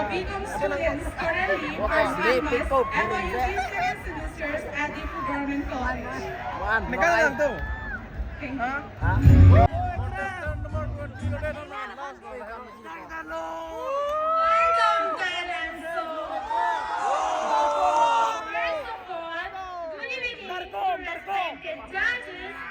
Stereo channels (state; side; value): identical; both; correlation 1.00